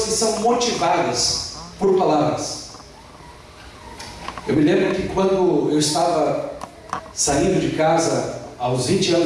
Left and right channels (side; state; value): both; identical; correlation 1.00